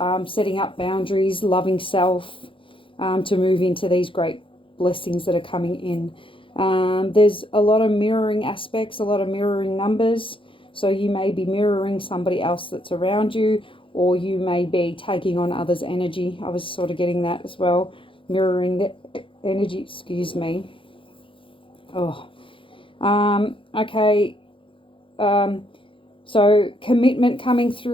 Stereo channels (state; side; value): late; right; 0.25 ms